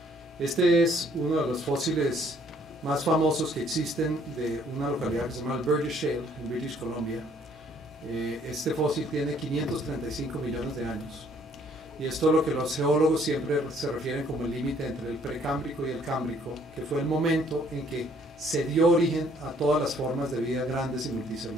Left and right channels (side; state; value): both; normal; correlation 0.62